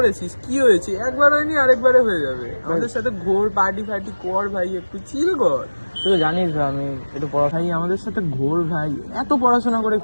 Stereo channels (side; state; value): both; inverted; correlation -1.00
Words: কি হয়েছে? একবার হয়নি আরেকবারে হয়ে যাবে। আমাদের সাথে ঘোর, পার্টি ফার্টি কর ভাই, একটু চিল কর। তুই তো জানিস ভাই আমি একটু ভাই আমাদের সাথে ঘোর ভাই, এত পড়াশোনা করে